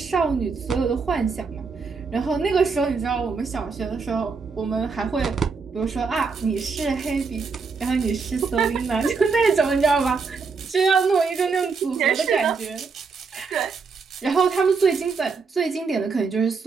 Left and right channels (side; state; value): left; quieter; 4.9 dB